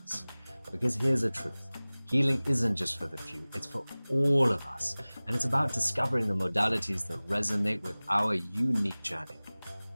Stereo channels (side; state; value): both; inverted; correlation -1.00